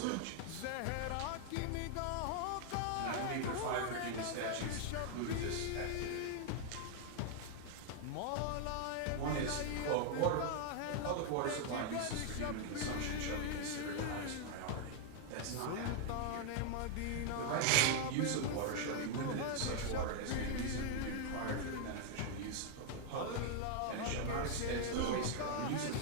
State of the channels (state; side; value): different; both; correlation 0.00